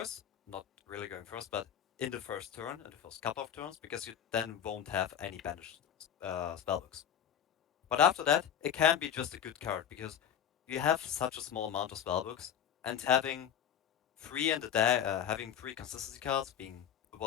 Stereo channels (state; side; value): quieter; right; 9.3 dB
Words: not really going first, but in the first turn, in the first couple of turns, because you then won't have any banished spellbooks. But after that, it can be just a good card because you have such a small amount of spellbooks, and having 3 consistency cards, being